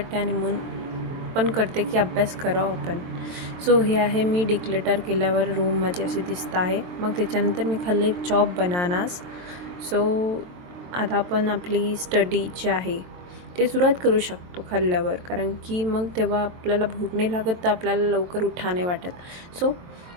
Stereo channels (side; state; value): left; late; 22 ms